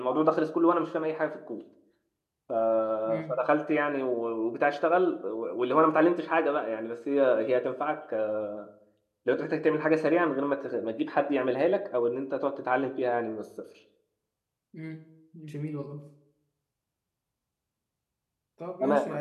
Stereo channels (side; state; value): both; identical; correlation 1.00